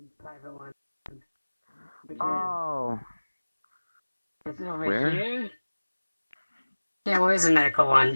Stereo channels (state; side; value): inverted; both; correlation -1.00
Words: Oh. This is over Where? here. Yeah, where's the medical one?